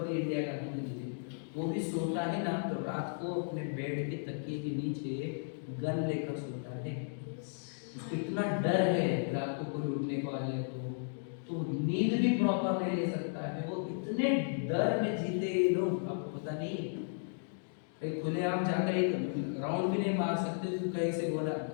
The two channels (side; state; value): right; silent; digital silence